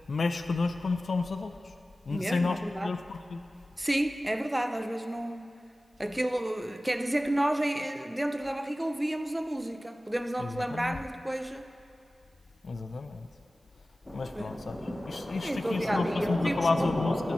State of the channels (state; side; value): normal; both; correlation 0.96